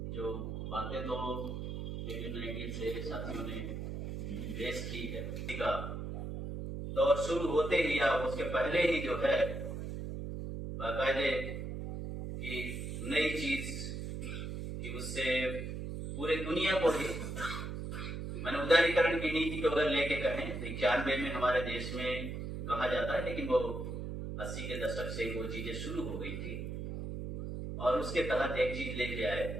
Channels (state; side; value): noise; right; hum, 5 dB below the sound